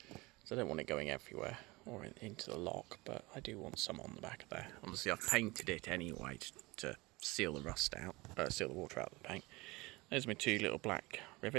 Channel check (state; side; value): quieter; left; 22.9 dB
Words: So I don't want it going everywhere or into the lock, but I do want some on the back of there. Obviously I've painted it anyway to seal the rust out, seal the water out of the paint. There's my 2 little black